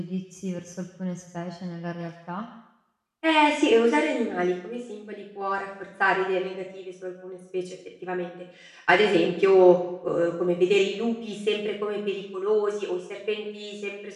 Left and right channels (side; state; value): both; identical; correlation 1.00